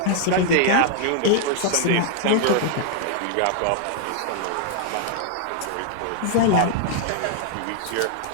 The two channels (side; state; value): both; different; correlation 0.00